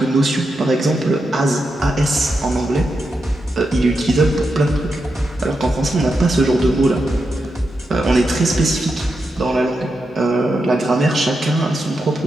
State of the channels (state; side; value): normal; both; correlation 0.86